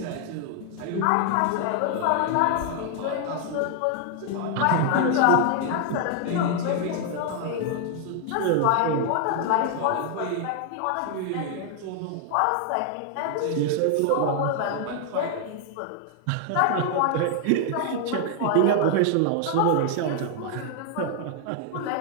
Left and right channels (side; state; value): both; different; correlation 0.00